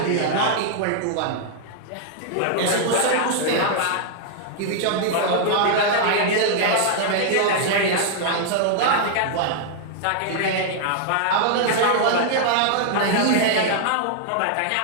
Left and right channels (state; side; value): different; both; correlation -0.01